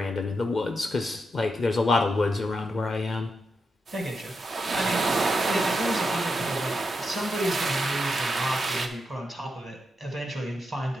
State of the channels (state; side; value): normal; both; correlation 0.85